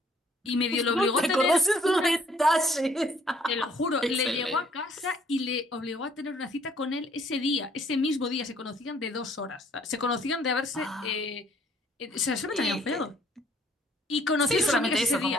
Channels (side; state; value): both; normal; correlation 0.62